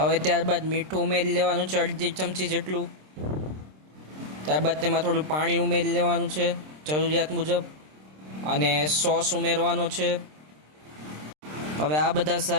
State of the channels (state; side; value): late; left; 26 ms